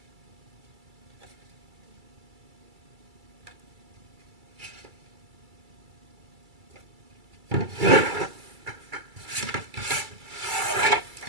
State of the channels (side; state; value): left; late; 2.3 ms